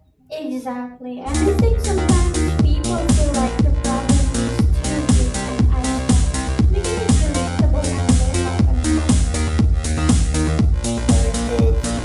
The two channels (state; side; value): identical; both; correlation 1.00